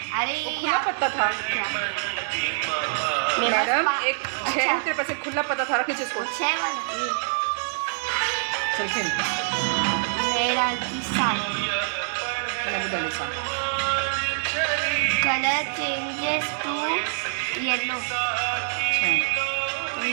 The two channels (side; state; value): left; silent; digital silence